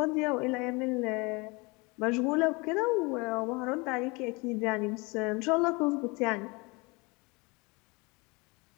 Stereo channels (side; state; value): right; quieter; 27.0 dB